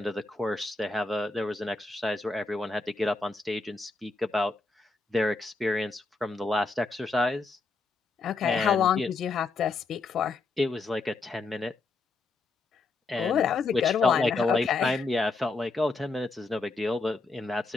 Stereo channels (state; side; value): quieter; right; 3.7 dB